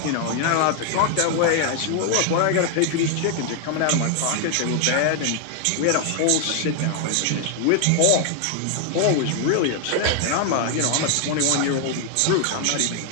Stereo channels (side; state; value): both; different; correlation 0.00